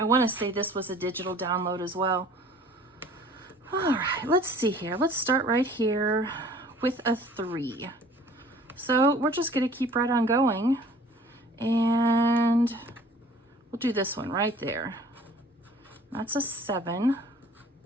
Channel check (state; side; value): normal; both; correlation 0.51